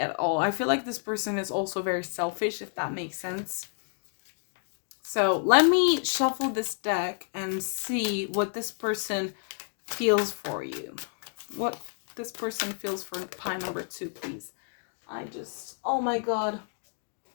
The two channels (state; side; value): silent; right; 58 dB below the other